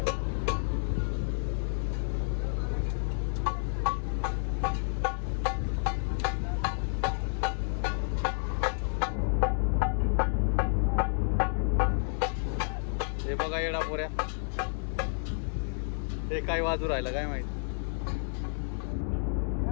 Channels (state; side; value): silent; right; digital silence